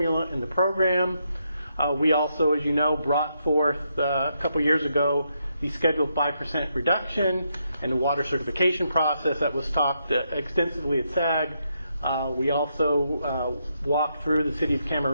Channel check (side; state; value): both; inverted; correlation -0.79